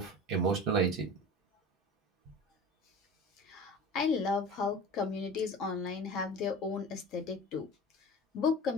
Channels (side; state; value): both; normal; correlation 0.36